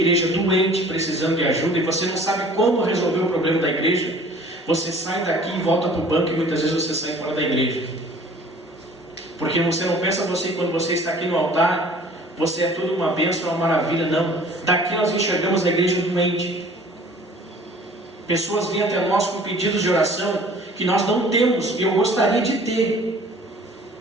doente, precisando de ajuda, e você não sabe como resolver o problema da igreja, você sai daqui e volta para o banco, e muitas vezes você sai fora da igreja. Porque você não pensa você, quando você está aqui no altar, você é tudo uma bênção, uma maravilha. Não. Daqui nós enxergamos a igreja doente. Pessoas vêm até nós com pedidos de oração que nós não temos, e eu gostaria de ter.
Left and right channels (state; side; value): normal; both; correlation 0.50